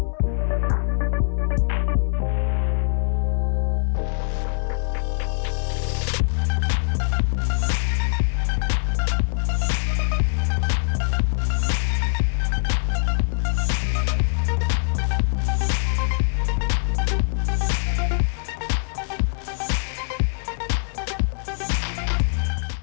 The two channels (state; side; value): silent; right; 63 dB below the other